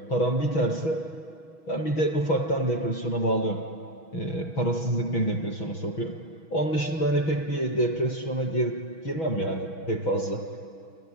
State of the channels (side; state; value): right; late; 6.2 ms